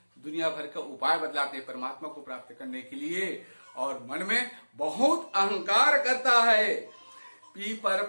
दुनिया भर का उपाय बदलाते हैं परमात्मा को प्राप्त करने के लिए। और मन में बहुत अहंकार करता है। पीपर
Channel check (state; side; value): inverted; both; correlation -1.00